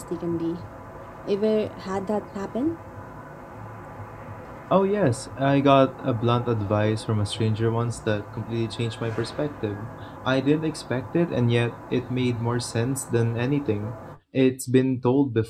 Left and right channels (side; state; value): both; identical; correlation 1.00